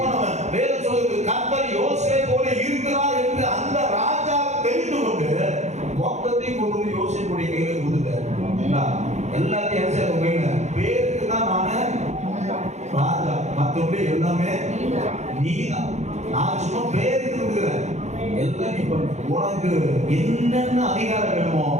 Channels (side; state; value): left; late; 0.33 ms